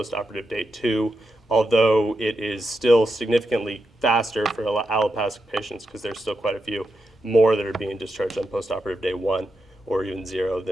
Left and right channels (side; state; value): both; normal; correlation 0.86